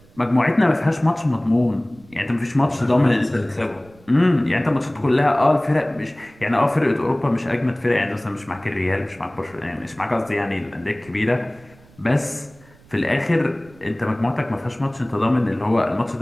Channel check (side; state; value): right; noise; rumble, 26 dB below the sound